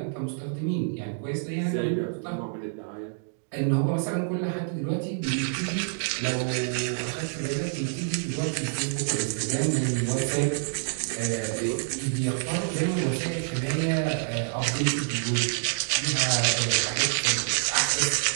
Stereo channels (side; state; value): left; silent; digital silence